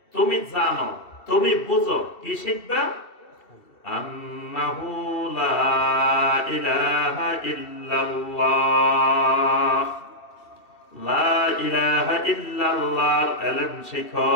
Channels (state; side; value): late; right; 2.7 ms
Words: তুমি জানো, তুমি বুঝো। কি শিখবা? আন্নাহু লা ইলাহা ইল্লাল্লাহ। লা ইলাহা ইল্লাল্লাহর ইলম শিখো,